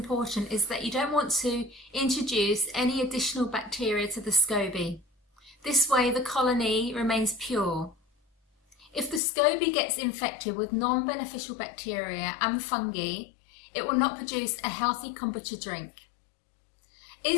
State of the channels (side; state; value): right; drops out; at 9.2 s